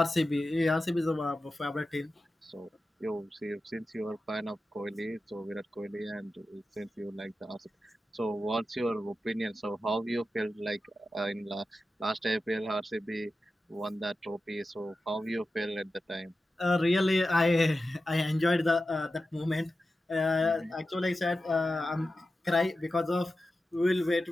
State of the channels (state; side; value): normal; both; correlation 0.92